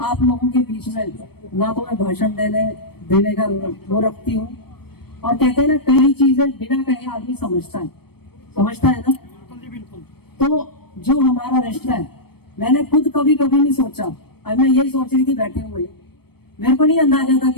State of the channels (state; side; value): late; right; 0.96 ms